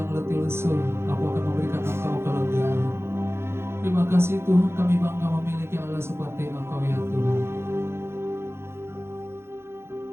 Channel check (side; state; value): left; late; 0.12 ms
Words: letih lesu, aku akan memberikan Engkau kelegaan. Terima kasih Tuhan, kami bangga memiliki Allah seperti Engkau ya Tuhan.